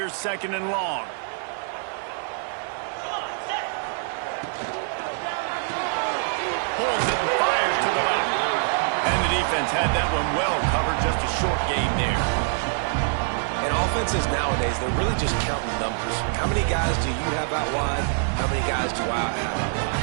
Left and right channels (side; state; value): left; silent; 62 dB below the other